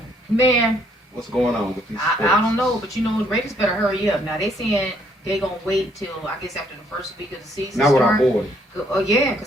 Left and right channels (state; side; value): normal; both; correlation 0.68